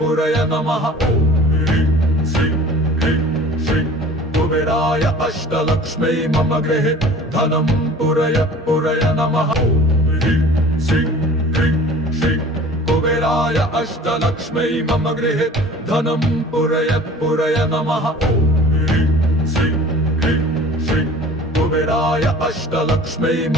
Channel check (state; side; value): normal; both; correlation 0.45